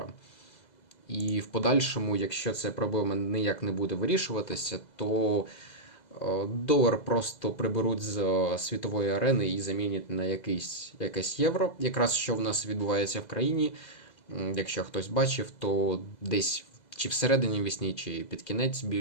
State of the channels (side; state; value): right; late; 2.0 ms